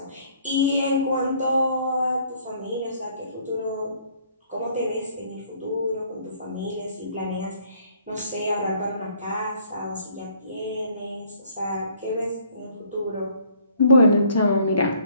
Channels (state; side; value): inverted; both; correlation -0.60